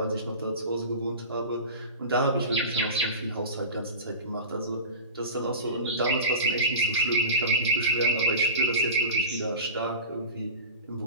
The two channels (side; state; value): both; inverted; correlation -0.31